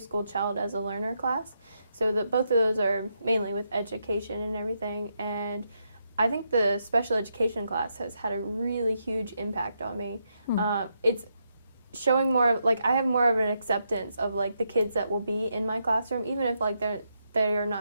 School Child as a Learner class. So both of those are mainly with education and everything. And I think the special education class has had a really huge impact on me. It's showing more, like, I have more of an acceptance of, like, the kids that will be in my classroom, even if, like, they are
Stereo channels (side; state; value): both; inverted; correlation -0.80